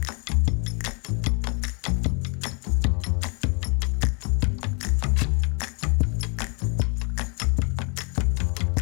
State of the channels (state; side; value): quieter; right; 35.0 dB